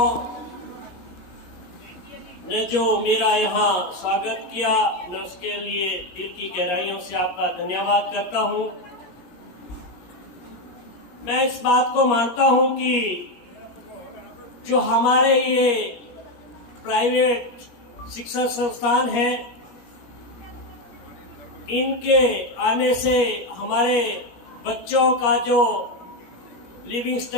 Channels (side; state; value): right; late; 17 ms